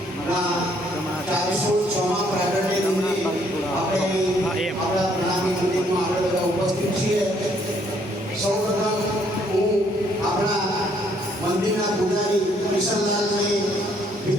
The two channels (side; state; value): both; normal; correlation 0.67